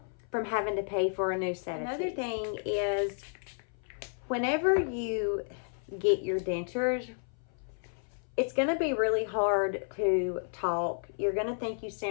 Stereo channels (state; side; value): silent; right; 57 dB below the other